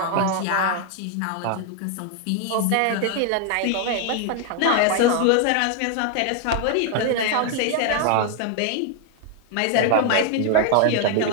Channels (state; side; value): different; both; correlation 0.00